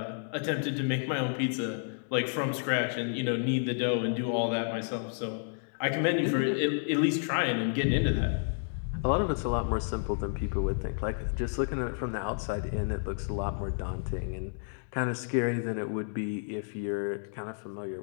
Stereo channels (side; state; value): right; silent; digital silence